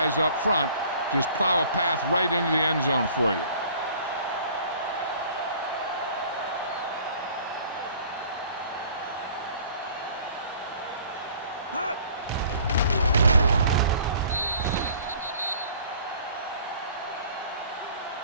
up front just plow a path right into the end zone for you.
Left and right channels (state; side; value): inverted; both; correlation -0.51